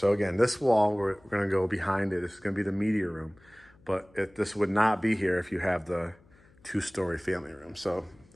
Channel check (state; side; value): noise; left; hum, 29 dB below the sound